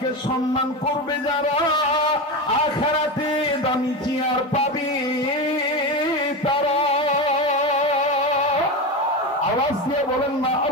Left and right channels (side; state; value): both; normal; correlation 0.19